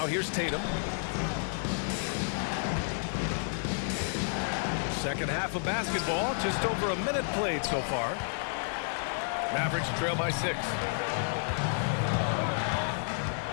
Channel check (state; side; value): silent; right; digital silence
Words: here's Tatum. Second half of basketball, just over a minute played so far. Mavericks trail by 6.